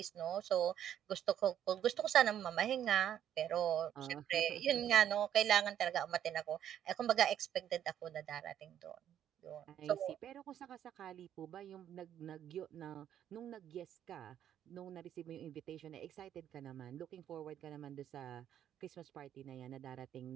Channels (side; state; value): left; quieter; 10.3 dB